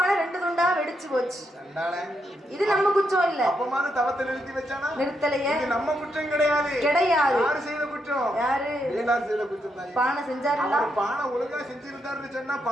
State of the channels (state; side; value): normal; both; correlation 0.80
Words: 2 துண்டா வெடிச்சு போச்சு. இது நம்ம குற்றம் இல்ல. அப்பமாது தவத்தை நிறுத்தி வச்சானா? நிறுத்தலையே. இது நம்ம குற்றம் கிடையாது. யாரு செய்த குற்றம்? யாரு? வேளார் செய்த குற்றம் தான். பானை செஞ்சாருல, பானை ஒழுங்கா செஞ்சிருந்தாருன்னு சொன்னா